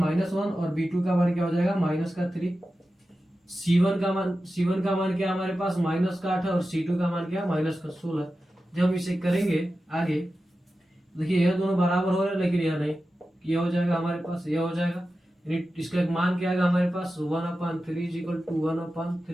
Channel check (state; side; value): normal; both; correlation 0.93